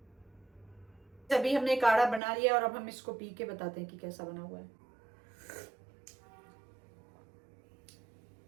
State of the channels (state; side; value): drops out; left; at 2.2 s